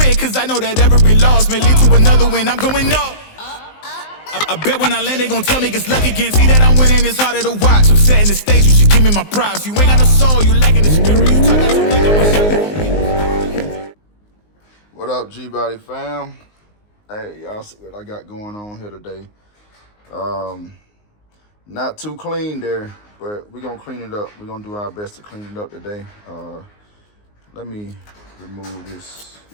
cause I know that every loss may lead to another win. I'm going up. I bet when I land, they gon' tell me it's luck again. See that I'm winning, it's harder to watch. I'm setting the stage, you should give me my props. You ain't got no soul, you lacking the spirit. You talk out your neck, I'ma show you. What up, G-Body fam? Hey, y'all see what I got going on here today. Not too clean there, but we're gonna clean it up. We're gonna do our best to clean it up today. Let me remove this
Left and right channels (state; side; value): late; right; 19 ms